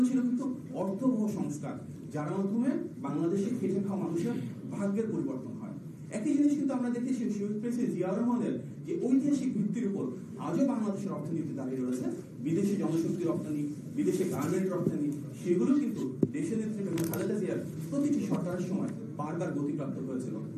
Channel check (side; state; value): both; identical; correlation 1.00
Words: ছিল কিন্তু অর্থবহ সংস্কার, যার মাধ্যমে বাংলাদেশে খেটে খাওয়া মানুষের ভাগ্যের পরিবর্তন হয়। একই জিনিস কিন্তু আমরা দেখেছি শহীদ প্রেসিডেন্ট জিয়াউর রহমানের যে ঐতিহাসিক ভিত্তির উপর আজও বাংলাদেশের অর্থনীতি দাঁড়িয়ে রয়েছে। বিদেশি জনশক্তি রপ্তানি, বিদেশে গার্মেন্ট রপ্তানি, সেগুলো কিন্তু দেশের নেতৃত্বে খালেদা জিয়ার প্রতিটি সরকারের সময় বারবার গতিপ্রাপ্ত হয়েছিল।